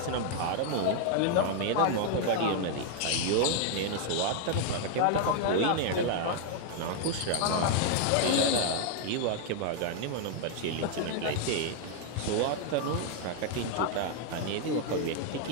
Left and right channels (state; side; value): different; both; correlation 0.00